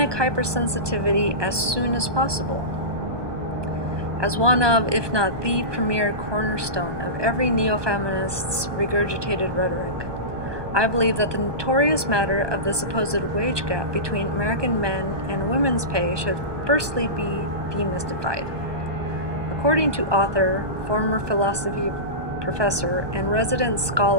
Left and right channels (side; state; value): left; late; 1.2 ms